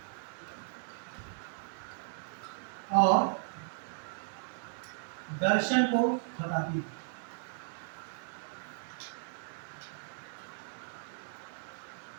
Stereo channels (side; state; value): left; silent; digital silence